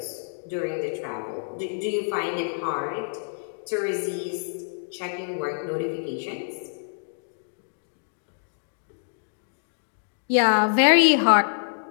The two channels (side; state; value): right; silent; digital silence